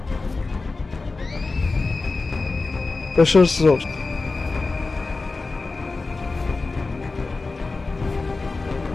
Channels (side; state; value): right; quieter; 3.7 dB